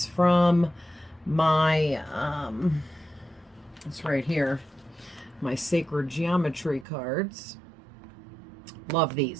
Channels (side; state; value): left; drops out; at 6.9 s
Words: from my it's right here, my Sacred Geometry cards. Love